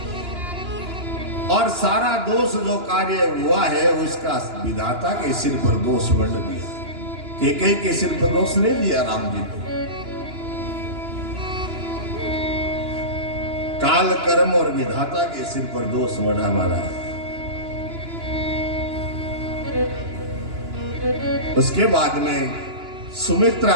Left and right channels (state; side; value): late; left; 2.9 ms